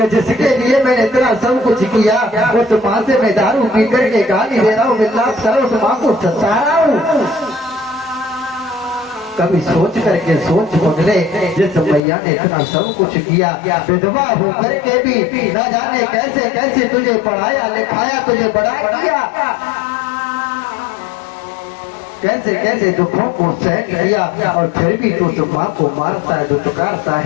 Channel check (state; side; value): drops out; right; at 12.0 s